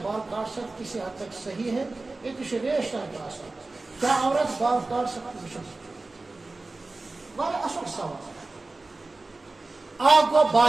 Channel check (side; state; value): left; quieter; 3.3 dB